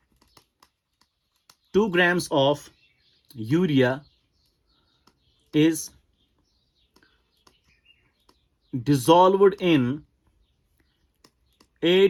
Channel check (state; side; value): identical; both; correlation 1.00